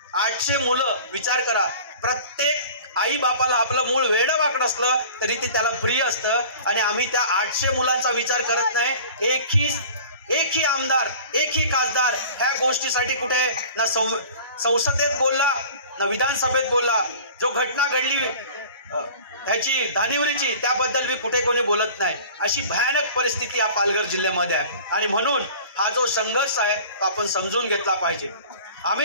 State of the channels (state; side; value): inverted; both; correlation -0.42